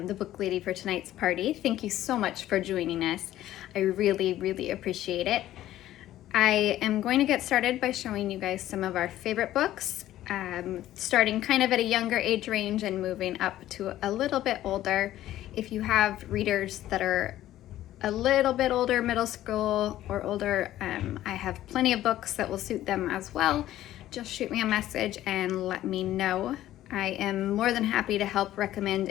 the book lady for tonight's party. Thank you so much for joining us. I really appreciate it. I am going to get started by showing you guys some of our favorite books, starting kind of at a younger age range and moving up to a little bit older. If you have readers that are a little bit older, middle school or older, I have plenty of books that will suit them as well. Just shoot me a message and let me know. I am more than happy to help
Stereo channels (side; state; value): right; quieter; 13.7 dB